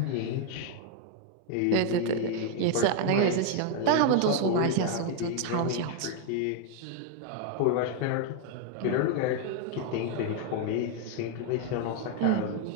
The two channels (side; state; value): both; different; correlation 0.00